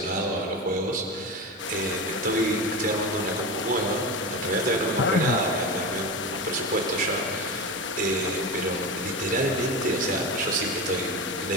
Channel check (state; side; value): normal; both; correlation 0.23